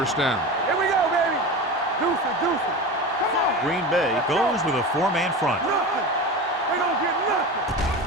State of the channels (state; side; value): normal; both; correlation 0.28